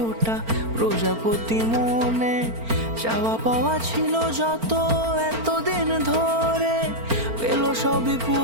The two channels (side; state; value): left; late; 4.4 ms